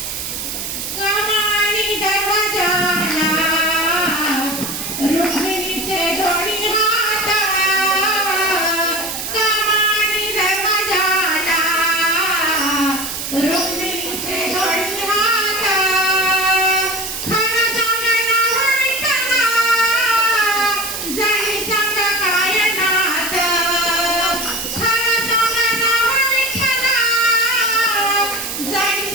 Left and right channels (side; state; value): right; noise; hiss, 5 dB below the sound